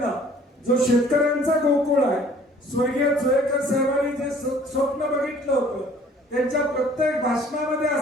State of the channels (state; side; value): normal; both; correlation 0.55